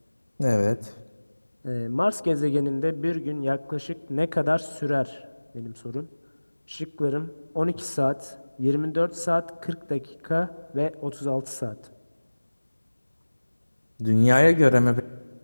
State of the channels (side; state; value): both; inverted; correlation -1.00